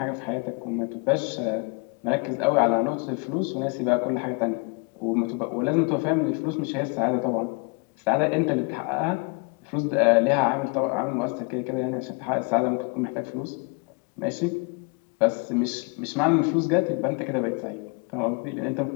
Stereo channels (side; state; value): right; quieter; 33.2 dB